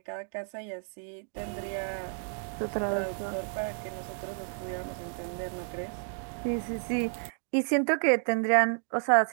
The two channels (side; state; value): left; silent; 56 dB below the other